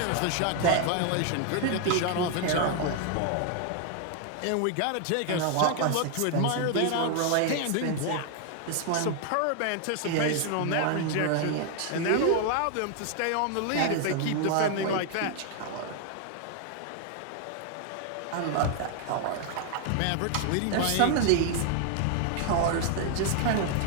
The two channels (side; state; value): both; different; correlation 0.00